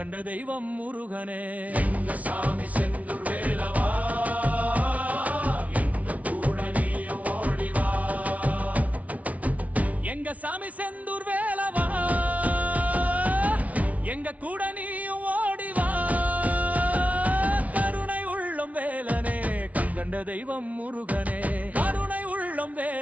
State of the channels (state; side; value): late; left; 0.069 ms